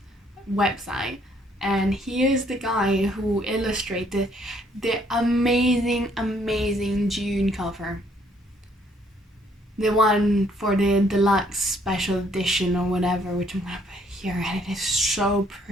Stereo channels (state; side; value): normal; both; correlation 0.66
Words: website. And he is the guy who illustrated the amazing June cover. The one for the deluxe special edition or whatever, which I'm gonna put here, and it is so